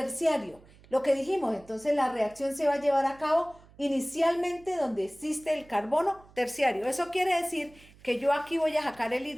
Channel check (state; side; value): noise; right; hum, 25 dB below the sound